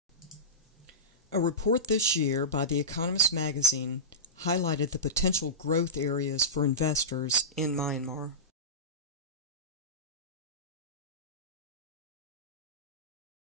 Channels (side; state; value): both; normal; correlation -0.18